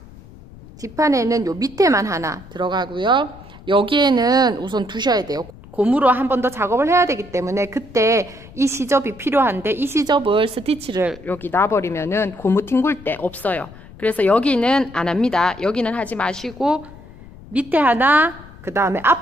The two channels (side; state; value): left; noise; rumble, 20 dB below the sound